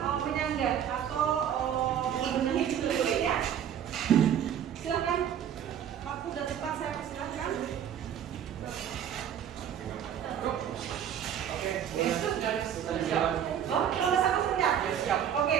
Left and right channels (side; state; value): left; quieter; 9.4 dB